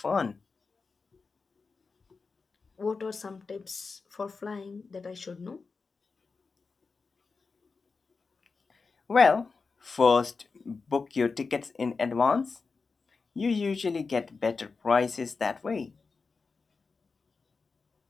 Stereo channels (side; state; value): right; quieter; 4.5 dB